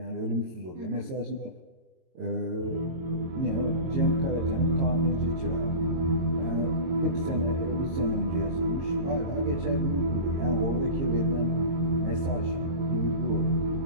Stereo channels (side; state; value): left; late; 22 ms